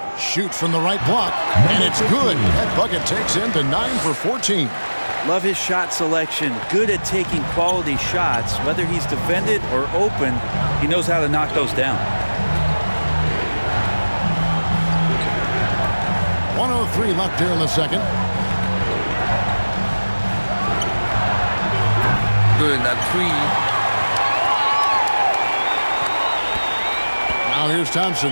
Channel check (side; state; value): both; inverted; correlation -1.00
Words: Shoots from the right block, and it's good. That bucket takes him to 9 for 14. Love his shot selection. Good at taking quality shots. Whether he's defended or open, he knows how to knock those down. 1:03 left here in the second. Good, that 3. Now here's Thompson.